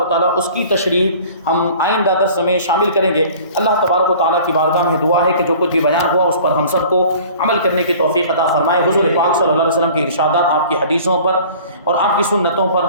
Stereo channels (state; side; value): inverted; both; correlation -0.47